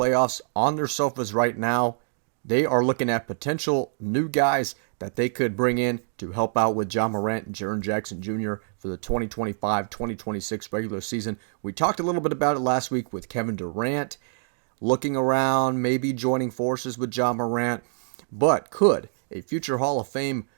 on their sofas right now. They are looking at potential new guys that they could bring in to help out with Ja Morant and Jaren Jackson Jr. for the 2025-2026 regular season. We talked a little bit about it last week with Kevin Durant looking around, maybe joining forces with Ja Morant. But could a future Hall of Fame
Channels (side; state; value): left; silent; digital silence